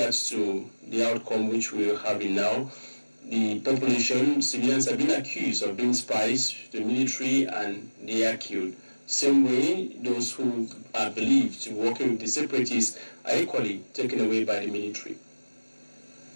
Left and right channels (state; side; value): inverted; both; correlation -1.00